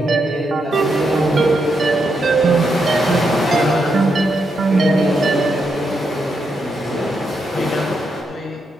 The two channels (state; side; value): normal; both; correlation 0.81